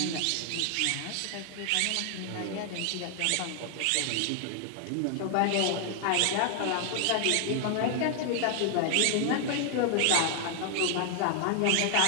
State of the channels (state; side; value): different; both; correlation 0.00